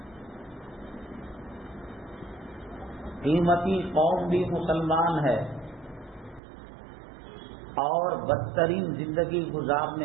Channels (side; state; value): left; drops out; at 6.4 s